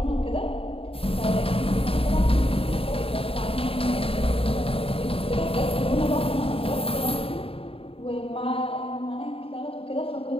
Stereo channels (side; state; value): right; late; 0.27 ms